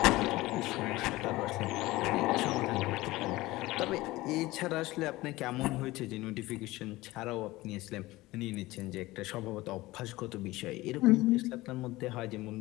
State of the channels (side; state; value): right; quieter; 19.1 dB